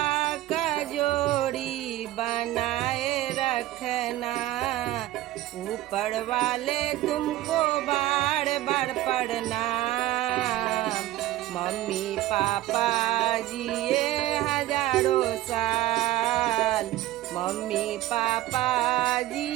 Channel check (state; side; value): quieter; left; 15.3 dB